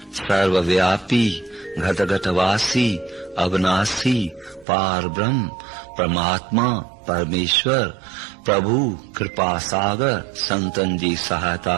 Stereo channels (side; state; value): left; drops out; at 4.7 s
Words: सर्वव्यापी, घट घट वासी, अविनाशी, पार ब्रह्म, परमात्मा, परमेश्वर, प्रभु, कृपा सागर, संतन जी